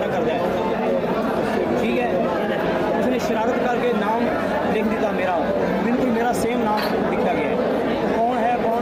कर जाए, ठीक है। उसने शरारत करके नाम लिख दिया मेरा, बिल्कुल मेरा सेम नाम लिखा गया है। कौन है कौन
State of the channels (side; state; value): both; identical; correlation 1.00